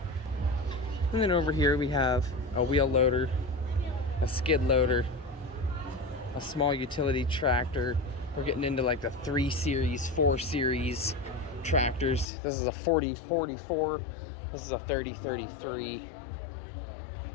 And then over here we have a wheel loader, a skid loader, a small utility tractor. We're getting into like the 3 series, 4 series tractors. This is a 4044. This is a 3033.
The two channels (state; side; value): drops out; right; at 12.2 s